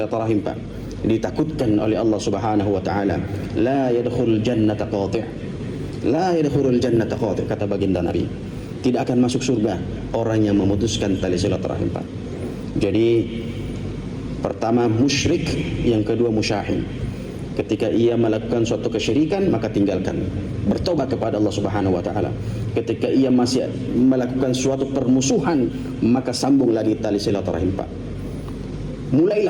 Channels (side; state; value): both; identical; correlation 1.00